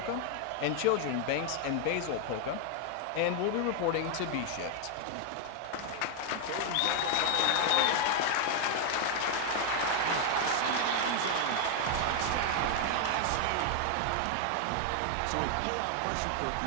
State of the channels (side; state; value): both; different; correlation 0.00